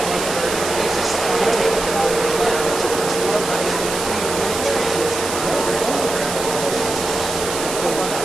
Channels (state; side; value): noise; right; hiss, 6 dB below the sound